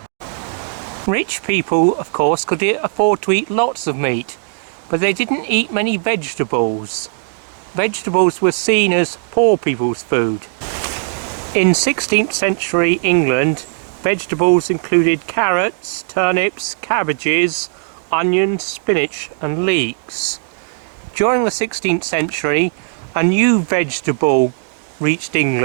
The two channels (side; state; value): left; silent; 68 dB below the other